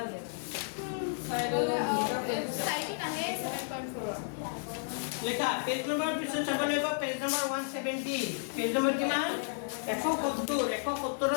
লেখা পেজ নম্বৰ পিছত চাব লাগিব পেজ নম্বৰ 170 পেজ নম্বৰ কিমান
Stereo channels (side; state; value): right; silent; digital silence